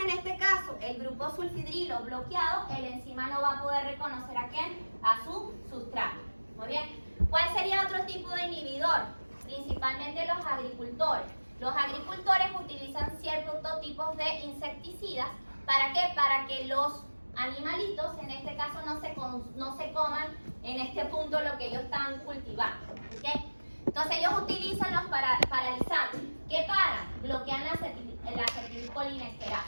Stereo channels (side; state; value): both; inverted; correlation -1.00